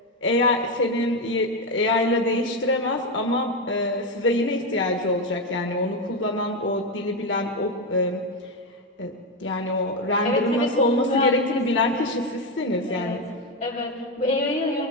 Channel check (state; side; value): normal; both; correlation 0.10